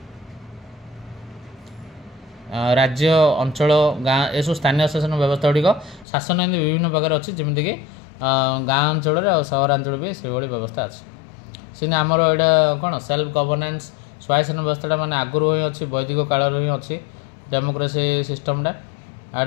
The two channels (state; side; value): drops out; right; at 6.1 s